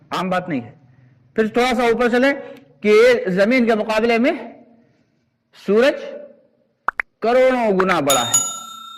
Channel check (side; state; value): both; identical; correlation 1.00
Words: عام بات نہیں ہے۔ پھر تھوڑا سا اوپر چلیں کہ زمین کے مقابلے میں سورج کروڑوں گنا بڑا